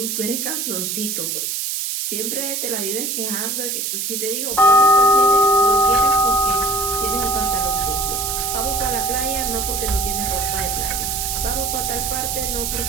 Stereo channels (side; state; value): right; noise; hiss, 2 dB below the sound